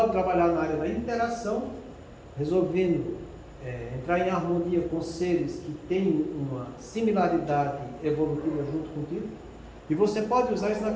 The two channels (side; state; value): both; identical; correlation 1.00